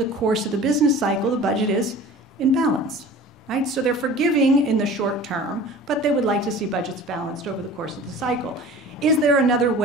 course of the business cycle, the budget is in balance. Right? So they're forgiving in the short term, but they would like to see budgets balanced over the course of the cycle. Is there another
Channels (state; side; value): normal; both; correlation 0.41